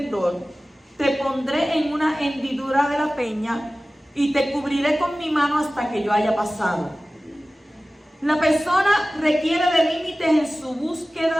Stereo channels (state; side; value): normal; both; correlation 0.97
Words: te pondré en una hendidura de la peña y te cubriré con mi mano hasta que yo haya pasado. La persona requiere de límites en su